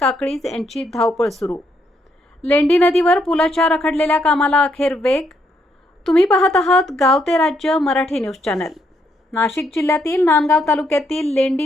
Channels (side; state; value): both; normal; correlation 0.75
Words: यांची धावपळ सुरू. लेंडी नदीवर पुलाच्या रखडलेल्या कामाला अखेर वेग. तुम्ही पाहत आहात गाव ते राज्य मराठी न्यूज चॅनल. नाशिक जिल्ह्यातील नांदगाव तालुक्यातील